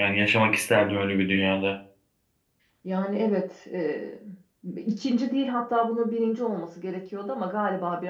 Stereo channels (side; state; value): both; identical; correlation 1.00